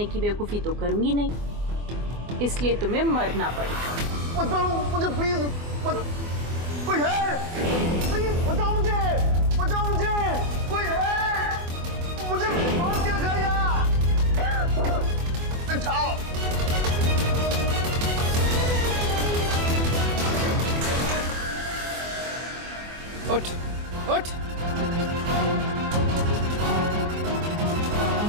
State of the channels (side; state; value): left; late; 24 ms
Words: की बेवकूफ़ी तो करूंगी नहीं, इसलिए तुम्हें मरना पड़ेगा। मत मारो मुझे प्लीज, मत। कोई है? प्लीज बचाओ मुझे, बचाओ मुझे, कोई है? मुझे बांध के रखा यहाँ। उठाओ। उठ, उठ।